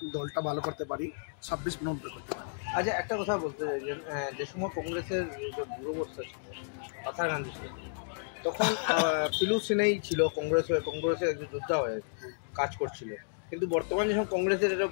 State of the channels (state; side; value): silent; right; digital silence